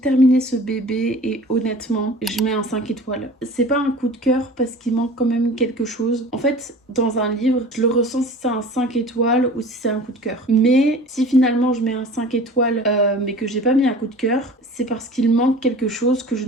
ce bébé et honnêtement, je mets un 5 étoiles. C'est pas un coup de cœur parce qu'il manque quand même quelque chose. En fait, dans un livre, je le ressens si c'est un 5 étoiles ou si c'est un coup de cœur. Mais si finalement je mets un 5 étoiles mais que j'ai pas mis un coup de cœur, c'est parce qu'il manque quelque chose que je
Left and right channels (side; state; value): both; normal; correlation 0.42